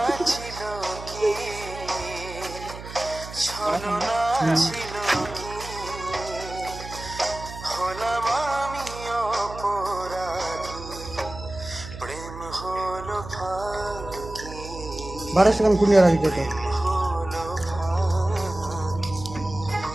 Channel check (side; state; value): right; noise; hum, 12 dB below the sound